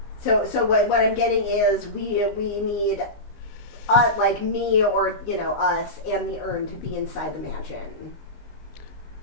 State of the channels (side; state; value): right; late; 19 ms